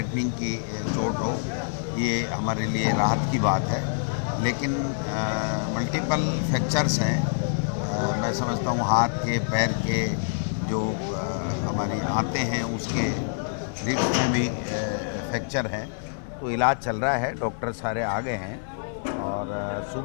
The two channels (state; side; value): silent; right; 61 dB below the other